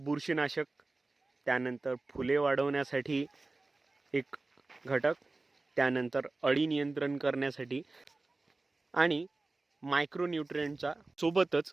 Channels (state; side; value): quieter; left; 3.3 dB